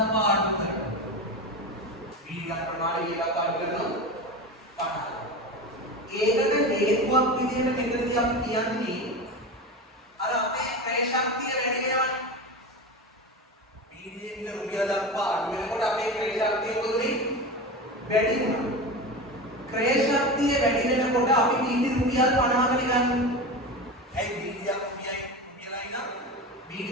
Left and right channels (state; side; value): normal; both; correlation 0.25